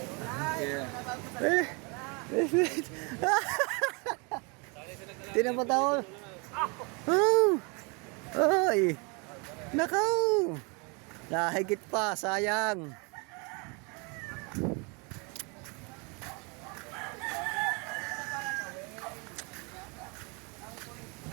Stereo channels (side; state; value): left; quieter; 31.8 dB